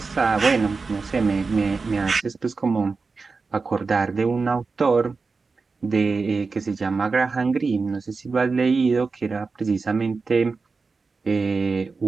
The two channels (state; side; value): quieter; left; 4.4 dB